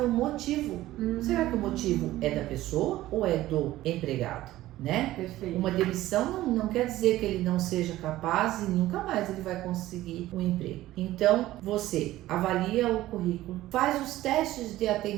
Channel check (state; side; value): quieter; left; 15.6 dB